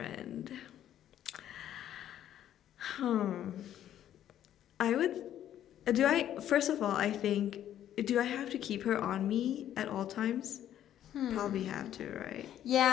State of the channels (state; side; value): quieter; right; 11.2 dB